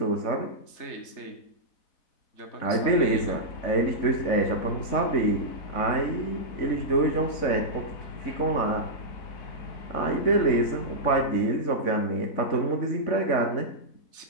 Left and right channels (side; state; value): right; late; 4.0 ms